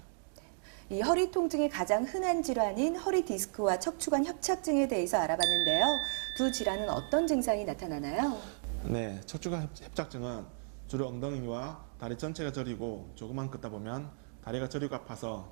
이 허리 통증의 가장 흔한 질환인 허리 디스크와 척추관 협착증에 대해서 알아봤는데요. 두 질환은 어떤 증상이 나타나나요? 네, 척추관 협착증은 주로 엉덩이와 다리 전체가 저리고 조금만 걷다 보면 다리가 저리고 아파서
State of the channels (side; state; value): left; silent; digital silence